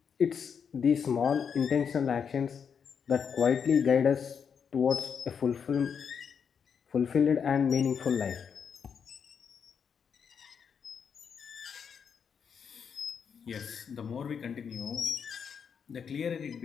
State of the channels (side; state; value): right; quieter; 6.9 dB